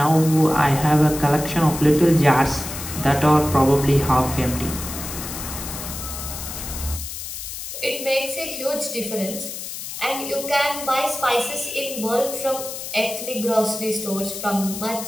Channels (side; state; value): left; noise; hiss, 8 dB below the sound